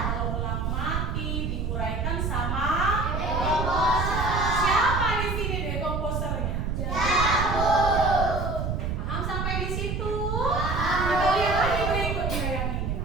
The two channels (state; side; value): noise; right; rumble, 1 dB below the sound